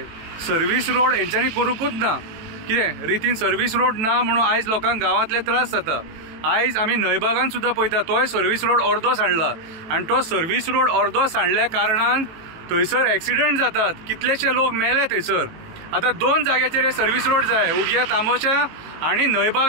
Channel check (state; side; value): late; left; 18 ms